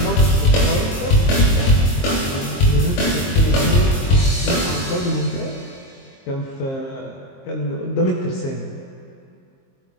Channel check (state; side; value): late; right; 22 ms